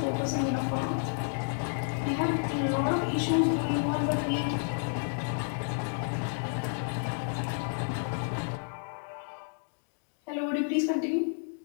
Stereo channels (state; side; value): silent; right; digital silence